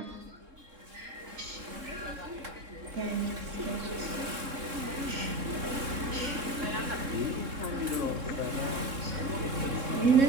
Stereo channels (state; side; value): late; left; 3.7 ms